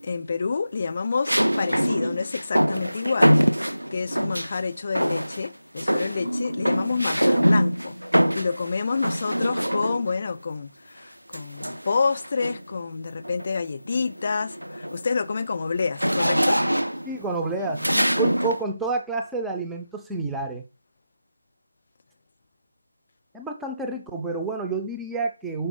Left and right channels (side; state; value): both; inverted; correlation -0.90